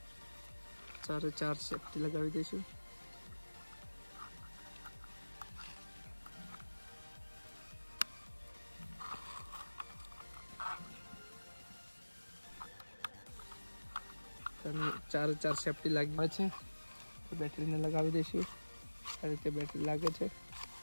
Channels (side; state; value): both; inverted; correlation -1.00